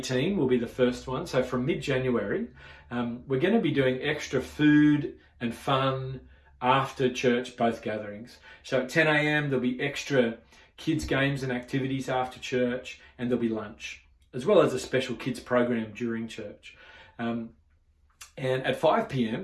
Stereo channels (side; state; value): both; identical; correlation 1.00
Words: will be the first one. So from mid-January, we're going to be doing extra food and fun after church, both gatherings. So at 10 a.m. there'll be extra kids games and activities after church, and there'll be lunch, as well as a special kids program during church. And at 5